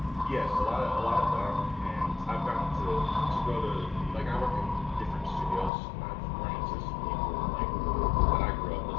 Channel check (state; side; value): drops out; right; at 5.7 s